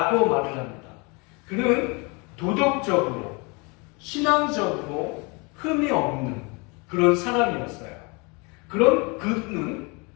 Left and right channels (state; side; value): quieter; right; 29.7 dB